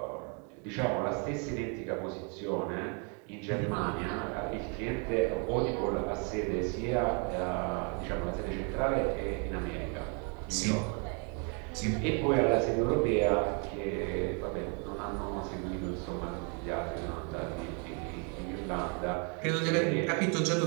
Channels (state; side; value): quieter; left; 37.0 dB